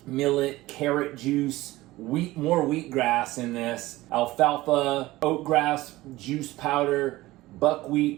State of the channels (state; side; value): quieter; left; 18.2 dB